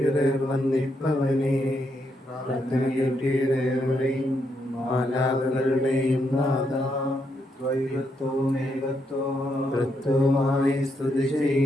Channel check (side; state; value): both; normal; correlation 0.79